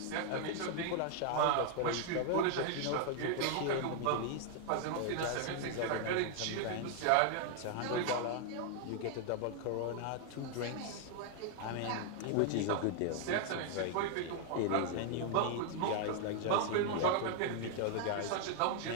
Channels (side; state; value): both; different; correlation 0.00